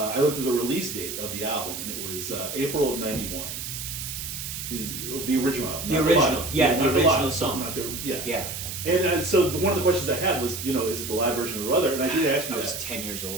looked at the release date of the album, and it was April of 91. The original album. The original, the original song. Not the, yeah. Yeah. And so one of the questions I had was, is it the live version or other? And I did ask you that. I was 10 years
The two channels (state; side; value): noise; right; hiss, 6 dB below the sound